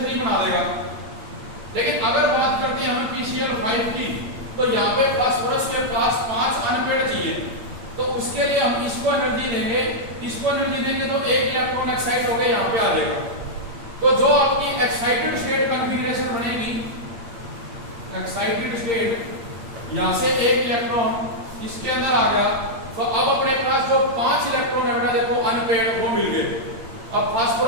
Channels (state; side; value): late; left; 8.7 ms